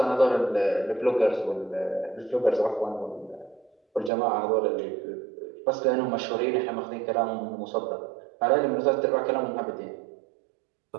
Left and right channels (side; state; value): left; drops out; at 4.1 s